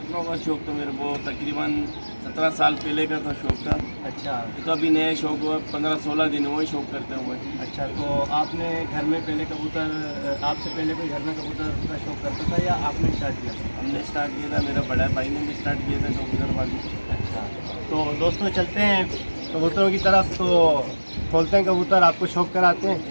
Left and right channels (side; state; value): both; inverted; correlation -1.00